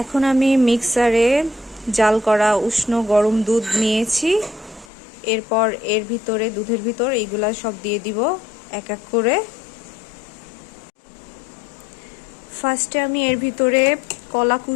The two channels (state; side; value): drops out; right; at 4.9 s